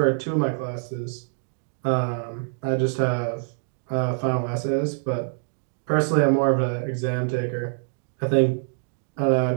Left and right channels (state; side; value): silent; left; digital silence